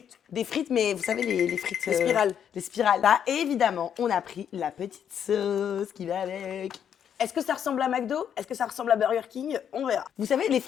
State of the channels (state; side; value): quieter; right; 8.7 dB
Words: des frites, mais vous savez, les frites... Les spirales. Les spirales. Là, et évidemment, on a pris la petite sauce qui va avec. Est-ce que ça ressemble à McDo? Est-ce que ça ressemble à Burger King? On verra. Vous savez, les